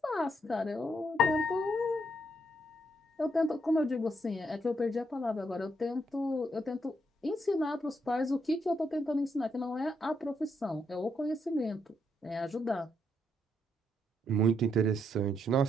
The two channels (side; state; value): both; normal; correlation 0.77